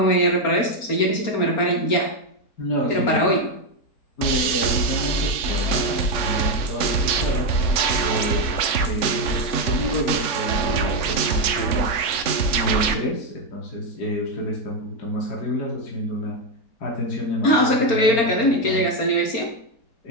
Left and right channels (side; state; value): right; late; 3.5 ms